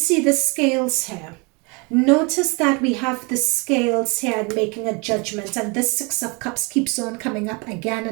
the scales here? Notice that we have the scales here and making a judgment, and this Six of Cups keeps on coming up again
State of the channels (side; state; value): left; quieter; 30.2 dB